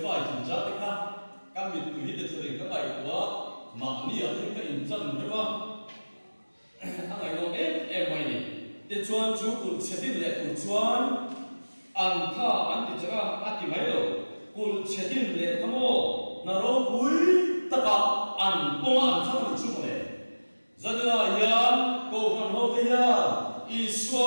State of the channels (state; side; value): inverted; both; correlation -1.00